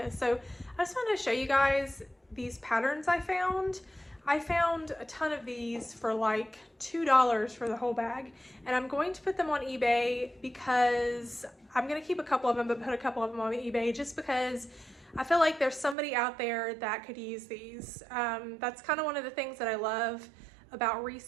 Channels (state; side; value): drops out; left; at 16.0 s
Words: So I just wanted to show you guys these patterns I found. I found a ton of these for like $2 for the whole bag, and I'm going to put them on eBay because I'm going to keep a couple of them, but put a couple of them on eBay just because I feel like there's somebody out there that could use these. That's kind of one of the things that I love about